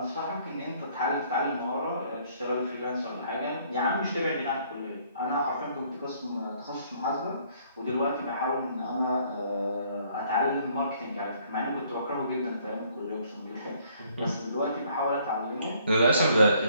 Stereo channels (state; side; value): inverted; both; correlation -0.63